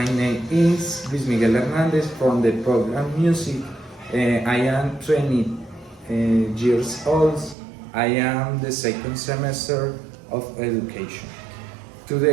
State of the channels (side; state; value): left; drops out; at 7.6 s